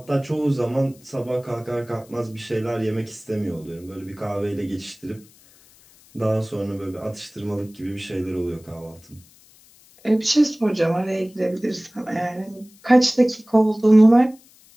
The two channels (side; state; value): left; noise; hiss, 27 dB below the sound